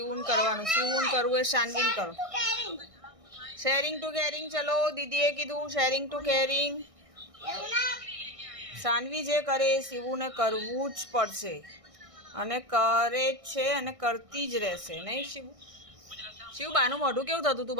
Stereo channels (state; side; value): late; left; 1.6 ms